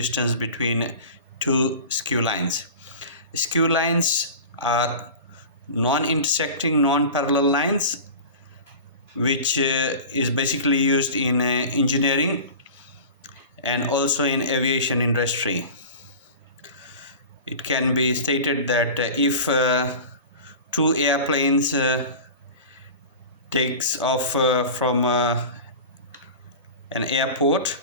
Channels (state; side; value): inverted; both; correlation -0.34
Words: between two skew lines. Skew lines are non-intersecting, non-parallel lines which is basically used in engineering and also in aviation industry. It can be stated that if two airplanes takes off from an airport